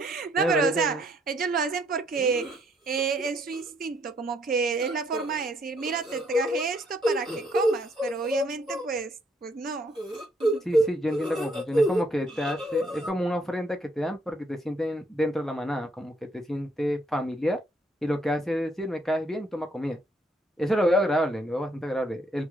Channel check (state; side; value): normal; both; correlation 0.70